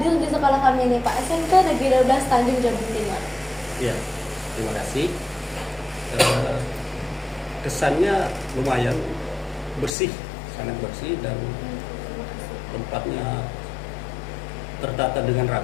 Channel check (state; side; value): drops out; right; at 9.9 s